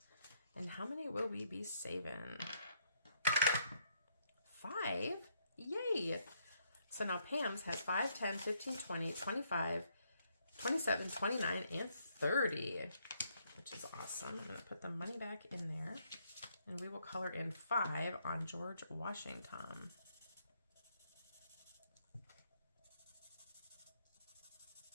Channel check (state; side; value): inverted; both; correlation -0.72